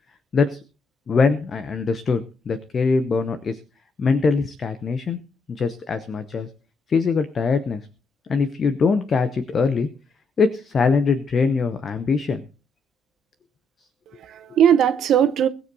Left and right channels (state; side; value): normal; both; correlation 0.73